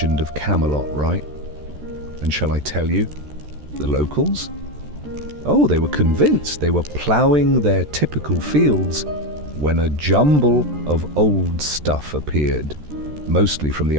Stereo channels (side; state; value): left; late; 13 ms